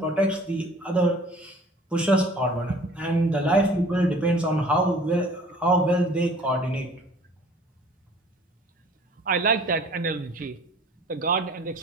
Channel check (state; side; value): normal; both; correlation 0.50